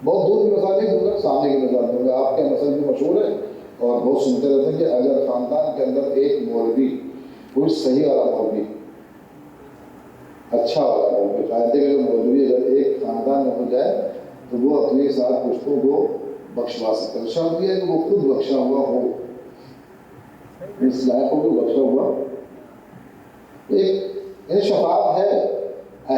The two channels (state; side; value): identical; both; correlation 1.00